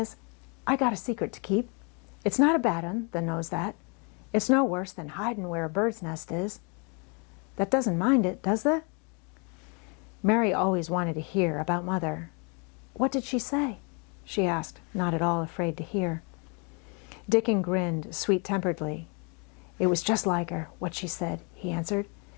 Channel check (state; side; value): quieter; right; 34.5 dB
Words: 'I got a secret to keep. It's not a bad un that knows that. It's no worse than hiding where a bird's nest is. That doesn't mind it, does they?'" Mary always wanted to hear about Mother. "What did she say?" she asked, not at all afraid to hear. Dickon grinned sweet-temperedly. "It was just like her, what she said," he answered.